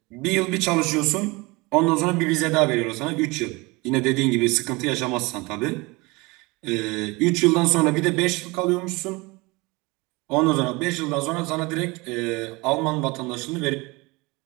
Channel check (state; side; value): quieter; left; 24.6 dB